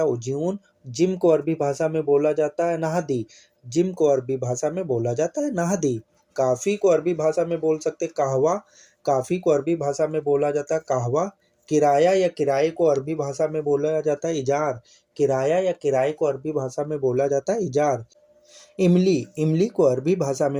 उजून। जिम को अरबी भाषा में बोला जाता है नहदी। जिम को अरबी भाषा में बोला जाता है नहदी। काफ़ी को अरबी भाषा में बोल सकते कहवा। काफ़ी को अरबी भाषा में बोला जाता है कहवा। किराया या किराए को अरबी भाषा में बोला जाता है इजार। किराया या किराए को अरबी भाषा में बोला जाता है इजार। इमली, इमली को अरबी भाषा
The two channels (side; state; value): both; identical; correlation 1.00